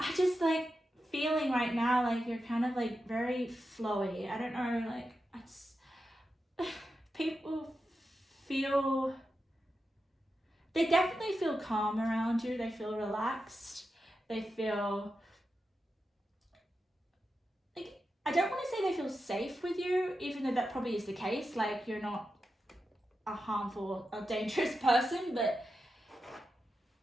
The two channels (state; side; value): normal; both; correlation 0.89